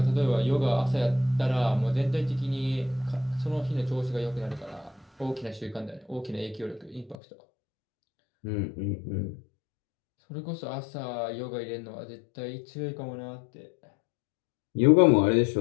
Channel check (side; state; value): right; drops out; at 7.2 s